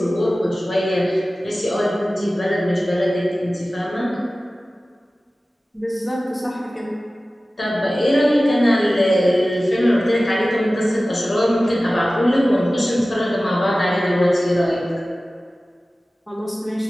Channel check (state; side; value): normal; both; correlation 0.96